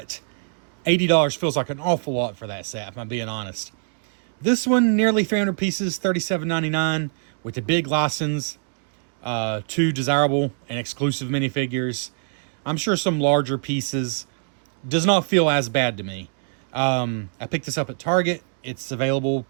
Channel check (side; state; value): left; silent; digital silence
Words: $80 feels like an awful lot for that set, if I'm being honest. This one, nearly 300 pieces, $37.99, with a big license, two desirable and exclusive minifigures. I'm sure some larger pieces. Does not feel as bad to me. I picked this up at Target. It's available